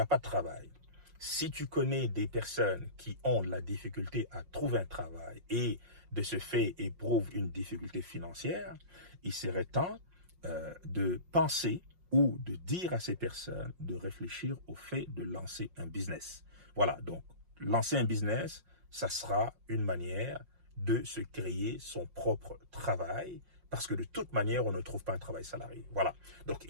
pas de travail, si tu connais des personnes qui ont de la difficulté à trouver un travail et de ce fait éprouvent une difficulté financière, il serait temps de penser ou de dire à ces personnes de réfléchir au fait de lancer un business. Voilà, donc lancer un business, ça sera une manière de se créer son propre travail, parce que de toute manière, on ne trouve pas un travail salarié. Voilà. Donc,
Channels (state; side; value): late; left; 5.6 ms